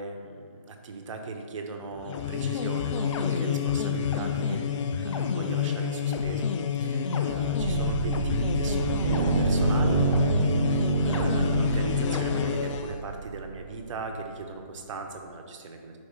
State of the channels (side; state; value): both; inverted; correlation -0.53